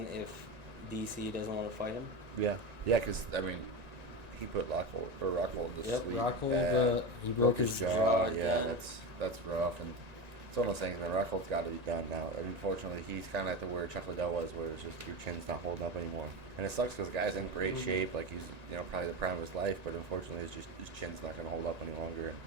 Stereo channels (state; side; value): late; left; 1.9 ms